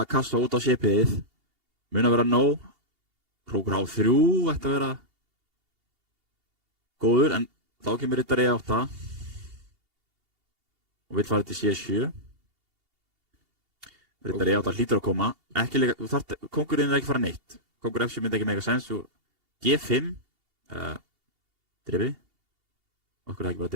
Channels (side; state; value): left; late; 2.8 ms